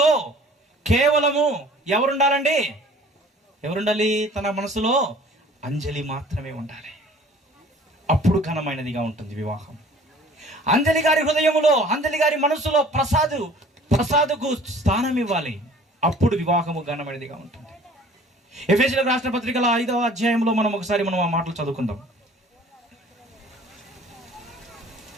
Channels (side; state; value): both; normal; correlation 0.50